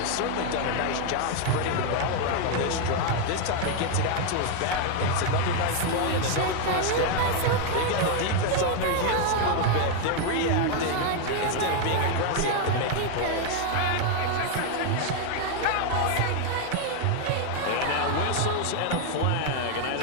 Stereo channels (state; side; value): different; both; correlation 0.01